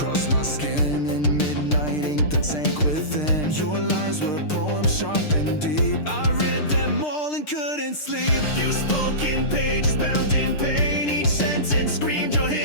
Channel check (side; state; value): right; late; 6.6 ms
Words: my skin in midnight ink that sank within. Your lies were poems sharp and deep. I read them all and couldn't sleep. You spoke in pages bound in pain. Each sentence screamed your